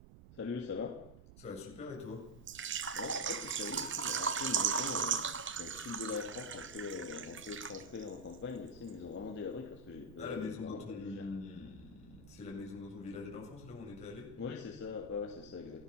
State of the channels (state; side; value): noise; right; rumble, 17 dB below the sound